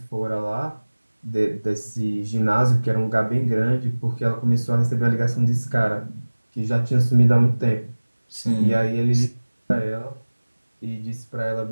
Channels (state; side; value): inverted; both; correlation -1.00